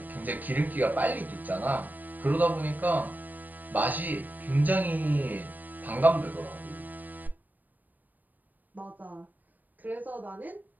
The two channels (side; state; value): left; late; 0.085 ms